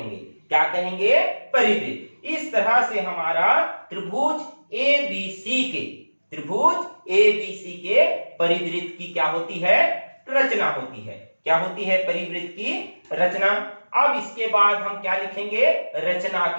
क्या कहेंगे, परिवृत्त। इस तरह से हमारा त्रिभुज ए बी सी के परिवृत्त की क्या होती है, रचना होती है। क्या होती है, परिवृत्त की रचना। अब इसके बाद हम क्या लिखेंगे, रचना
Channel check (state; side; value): inverted; both; correlation -1.00